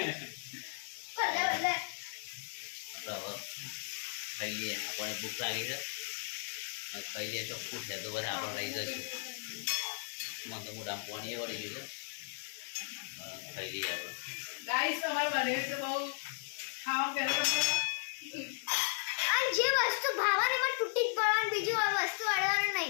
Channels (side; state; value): right; silent; digital silence